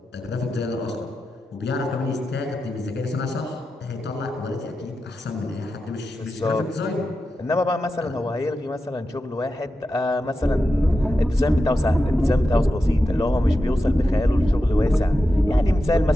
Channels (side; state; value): both; normal; correlation 0.90